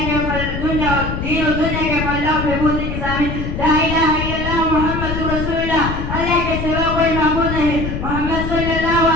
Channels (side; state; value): left; noise; rumble, 4 dB below the sound